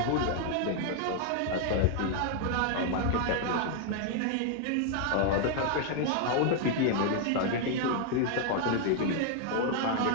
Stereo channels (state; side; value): different; both; correlation 0.00